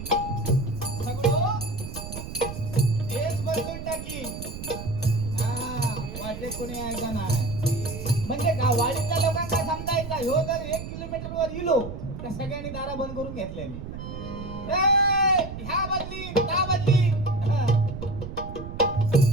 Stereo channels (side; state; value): right; noise; rumble, 9 dB below the sound